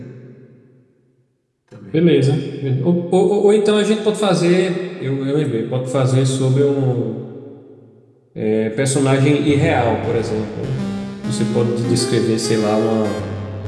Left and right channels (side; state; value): both; identical; correlation 1.00